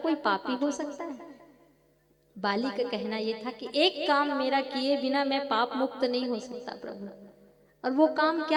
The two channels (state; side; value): identical; both; correlation 1.00